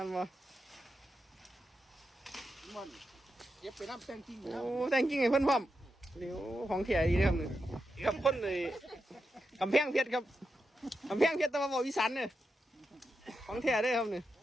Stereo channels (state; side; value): normal; both; correlation 0.87